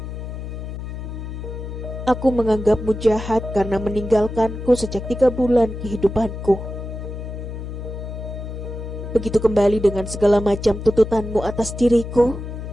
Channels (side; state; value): left; noise; hum, 8 dB below the sound